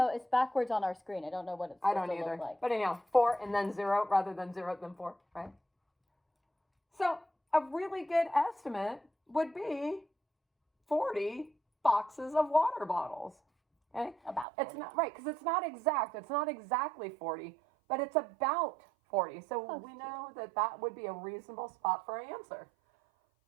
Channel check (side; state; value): left; drops out; at 14.5 s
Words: It's backwards on our screen. I don't know what it's I supposed don't to either. look like. But anyhow, 4 and then 0 rather than 0 then 4, right? So a really good estimate would be 40 boxes of water bottles. Okay? About It's 40. not right because it's not exact. It's not exactly 40, but it's about 40. So Close we to. know that that would be a reasonable spot for our answer.